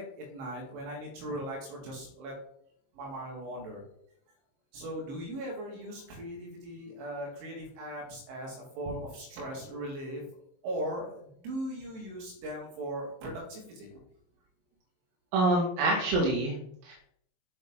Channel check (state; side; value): late; left; 23 ms